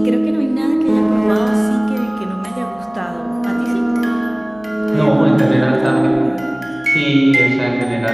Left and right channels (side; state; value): right; noise; hum, 28 dB below the sound